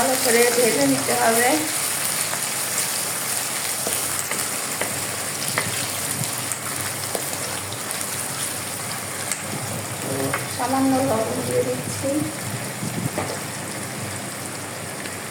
করে ভেজে নিতে হবে। সামান্য লবণ দিয়ে দিচ্ছি।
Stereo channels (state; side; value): identical; both; correlation 1.00